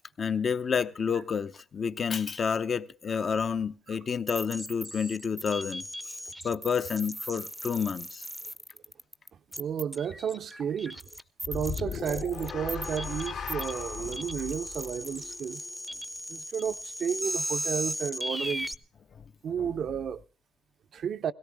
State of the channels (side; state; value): both; normal; correlation 0.76